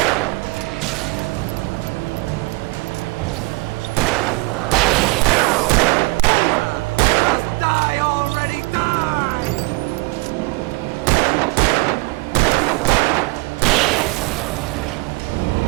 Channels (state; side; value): quieter; left; 25.6 dB